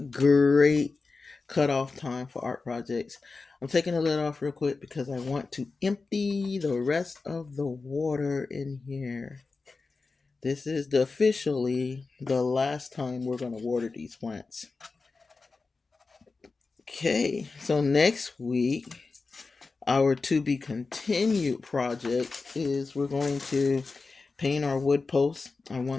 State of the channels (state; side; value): quieter; right; 4.1 dB